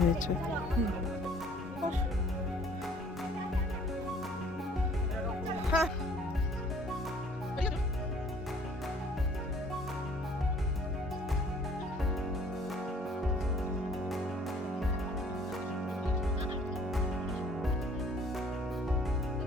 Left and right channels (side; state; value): both; normal; correlation 0.56